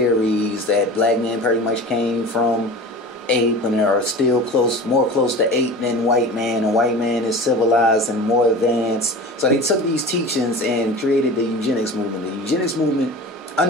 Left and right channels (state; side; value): normal; both; correlation 0.35